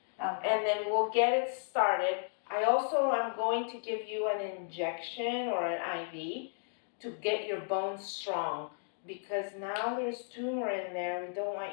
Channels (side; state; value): right; silent; digital silence